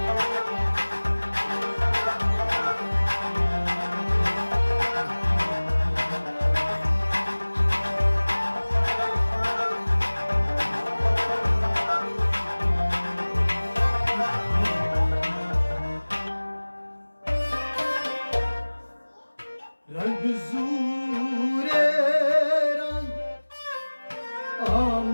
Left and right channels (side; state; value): both; inverted; correlation -1.00